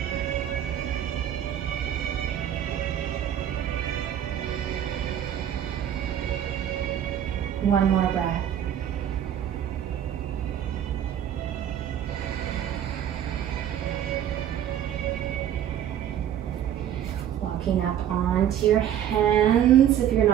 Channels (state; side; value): quieter; left; 10.3 dB